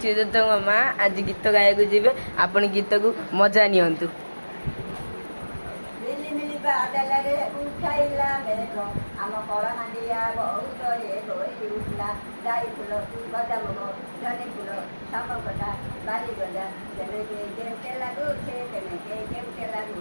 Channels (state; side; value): inverted; both; correlation -1.00